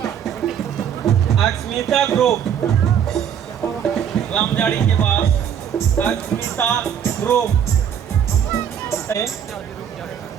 अक्षमिता ग्रुप। रामजाड़ी के बाद अक्षमिता ग्रुप।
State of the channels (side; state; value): left; quieter; 8.6 dB